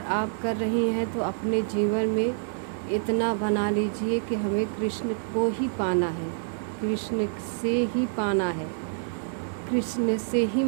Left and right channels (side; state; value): left; silent; digital silence